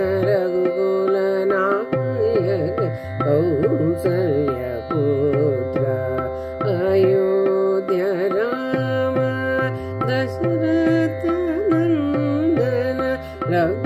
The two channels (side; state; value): both; identical; correlation 1.00